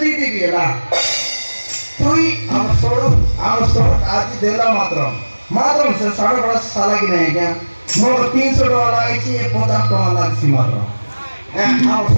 দিদি এলা তুই আমার छोड़ আজি দেলা মাত্র সে সাড়ে বড় সালা কি নাই क्या মোর 300 টাকা লাগাইছি 50 টাকা লাগছি মাত্র হ্যাঁ আমার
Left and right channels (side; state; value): both; inverted; correlation -1.00